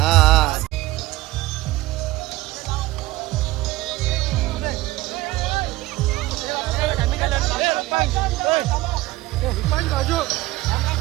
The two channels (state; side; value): quieter; left; 18.1 dB